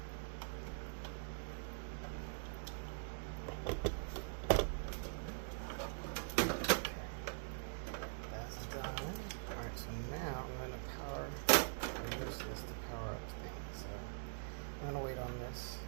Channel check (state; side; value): silent; left; digital silence